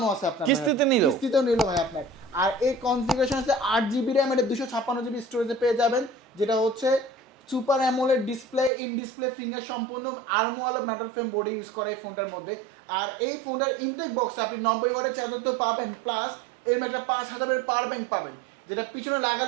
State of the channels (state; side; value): drops out; left; at 8.7 s